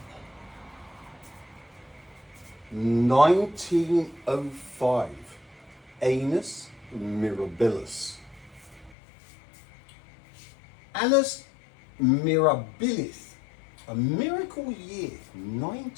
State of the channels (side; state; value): right; drops out; at 9.0 s